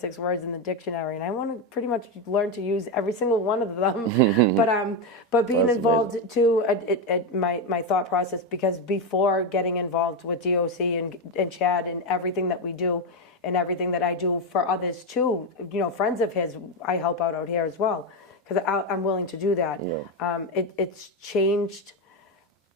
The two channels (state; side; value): normal; both; correlation 0.09